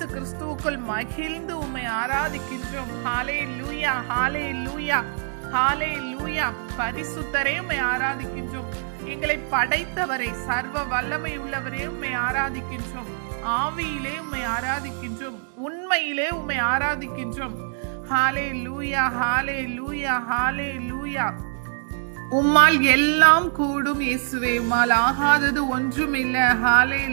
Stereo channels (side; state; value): left; silent; 62 dB below the other